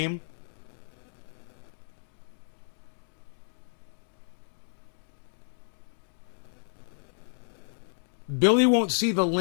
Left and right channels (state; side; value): silent; right; digital silence